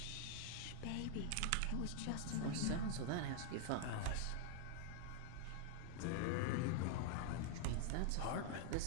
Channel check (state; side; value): different; both; correlation 0.00